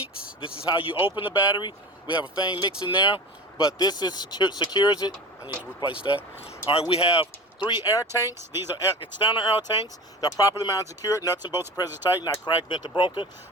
This is how you open the battery. We have a thing mixing there, but this secures it. I need to replace that. All right, we have 3 air tanks. These are external air tanks. They're properly mounted, secured. Nuts and bolts are present tight, not cracked, bent, or broken.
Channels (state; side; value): normal; both; correlation 0.34